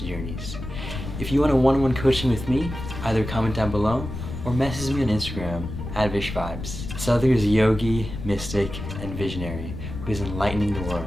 journeys. If you want a one-on-one coaching with me, either comment down below or message me on Instagram at VishVibez. Sadhguru is a yogi, mystic, and visionary who is enlightening the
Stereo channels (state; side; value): noise; left; rumble, 8 dB below the sound